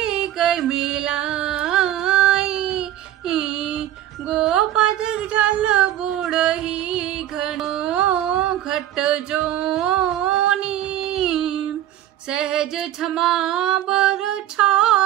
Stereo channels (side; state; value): left; quieter; 12.6 dB